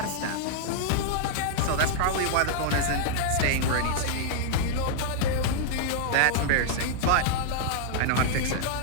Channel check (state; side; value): different; both; correlation -0.01